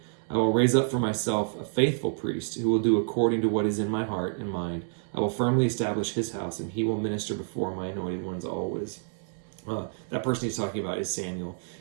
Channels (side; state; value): left; silent; digital silence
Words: I will raise up for myself a faithful priest who will do according to what is in my heart and mind. I will firmly establish his house, and he will minister before my anointed ones always." That person he's talking about is Samuel,